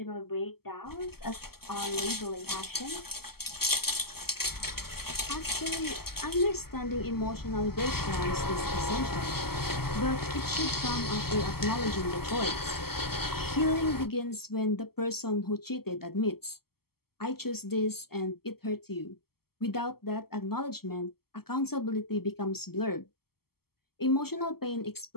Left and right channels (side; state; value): right; late; 0.95 ms